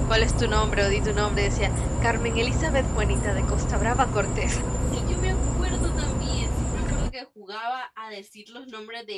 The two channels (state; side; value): identical; both; correlation 1.00